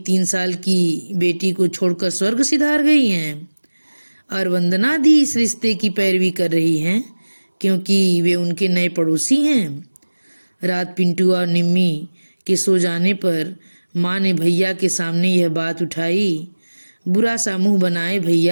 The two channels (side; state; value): both; inverted; correlation -1.00